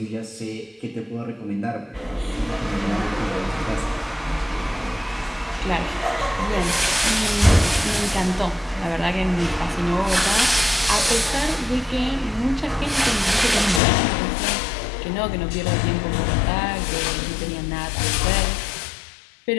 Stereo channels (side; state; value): right; drops out; at 13.8 s